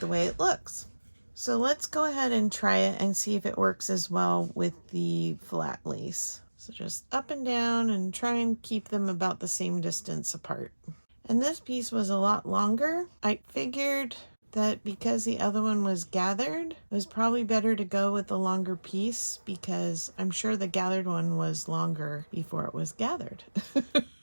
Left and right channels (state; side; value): inverted; both; correlation -1.00